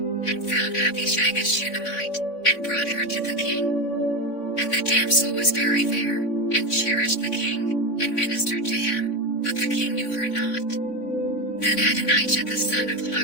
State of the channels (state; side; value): late; right; 3.5 ms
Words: and found Abishag a Shunammite, and brought her to the king. And the damsel was very fair, and cherished the king, and ministered to him, but the king knew her not. Then Adonijah the son of